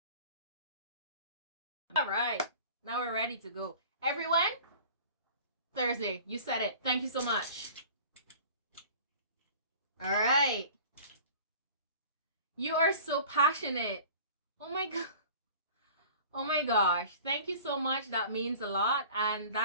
Alright, now we're ready to go. Everyone, Thursday, you said it. Thank you so much. Alright. You are so passionate. Oh my god. Oh my gosh. Thank you so much. That means a lot. And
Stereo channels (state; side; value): inverted; both; correlation -0.44